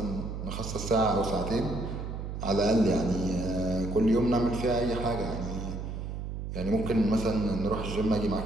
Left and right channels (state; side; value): noise; right; hum, 6 dB below the sound